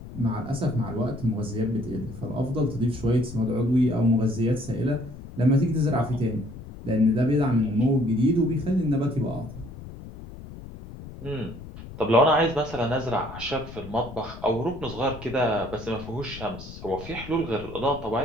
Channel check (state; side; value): noise; left; rumble, 14 dB below the sound